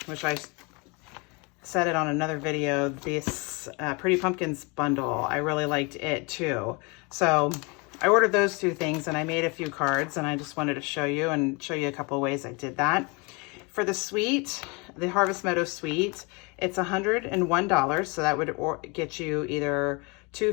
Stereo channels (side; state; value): right; quieter; 29.4 dB